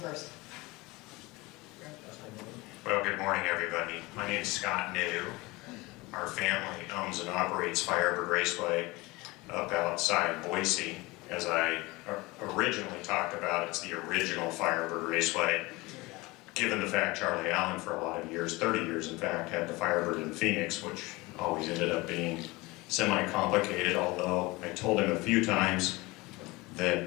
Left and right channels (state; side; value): quieter; right; 22.5 dB